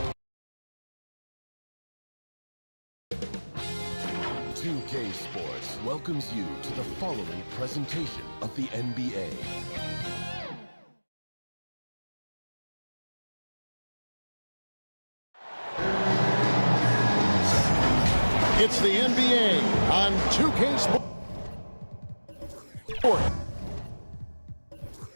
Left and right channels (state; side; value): inverted; both; correlation -1.00